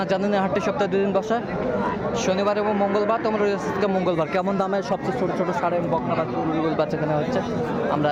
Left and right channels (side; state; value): both; identical; correlation 1.00